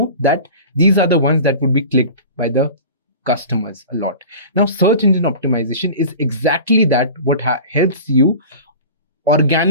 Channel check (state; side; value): inverted; both; correlation -0.37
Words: that these are the ones that would be clicked by the customers a lot. Now, search engine optimization is exactly that, what helps you